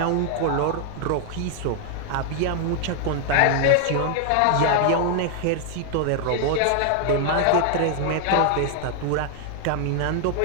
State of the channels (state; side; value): different; both; correlation 0.00